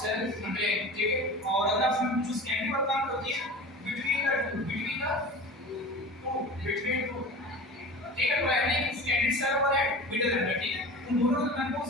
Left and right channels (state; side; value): normal; both; correlation 0.35